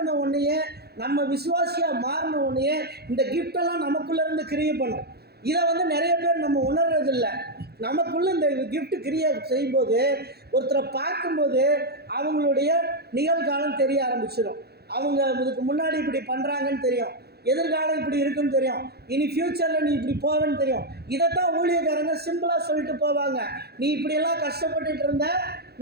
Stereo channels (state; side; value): late; left; 0.46 ms